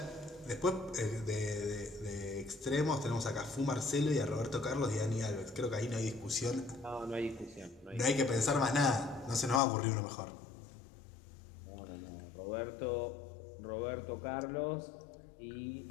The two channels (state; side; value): drops out; right; at 9.6 s